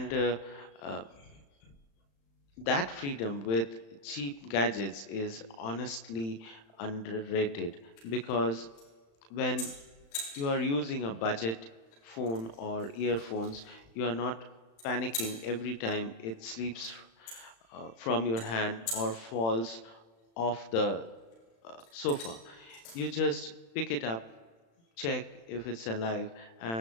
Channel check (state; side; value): late; right; 35 ms